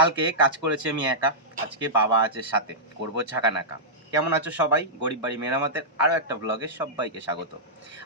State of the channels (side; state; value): both; normal; correlation -0.13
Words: কাজ করেছি আমি একা, আজকে বাবা আছে সাথে, করব ঝাঁকানাকা। কেমন আছো সবাই? গরিব বাড়ি মেরামতের আরও একটা ব্লগে সবাইকে স্বাগত।